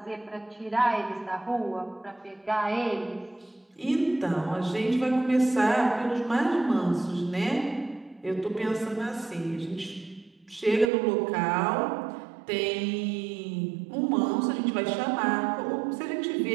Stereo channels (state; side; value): drops out; left; at 10.9 s